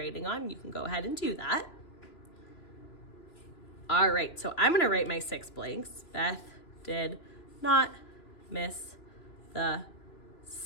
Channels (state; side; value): late; right; 2.9 ms